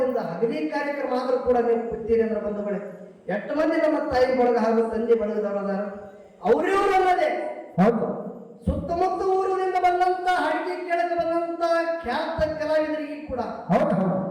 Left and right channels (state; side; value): identical; both; correlation 1.00